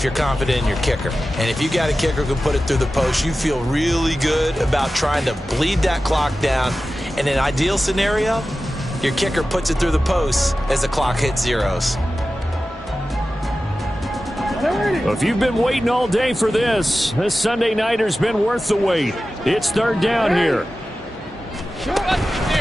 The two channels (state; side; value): normal; both; correlation 0.94